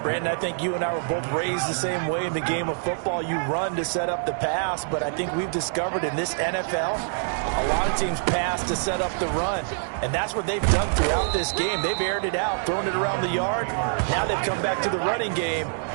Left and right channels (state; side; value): silent; left; 62 dB below the other